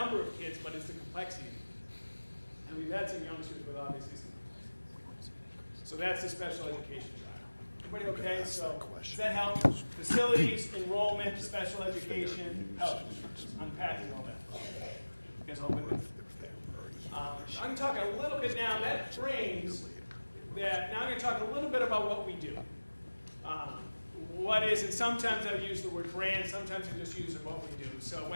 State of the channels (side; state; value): both; inverted; correlation -1.00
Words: of kids, but it's the complexity of the kids. And we've had some youngsters with obviously some complexity. So that's the special education drive. Everybody okay? So does that help? Facilities, enrollment, special education, health insurance. Unpacking all that. You guys all with me? I'm talking a little bit now, that frames that, now I'm going to talk a little bit about what we do. What is, and sometimes I use the word brand, sometimes I just use what we do. So